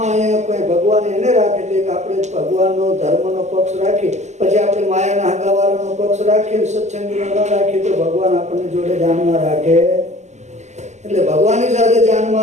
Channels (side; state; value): left; late; 0.33 ms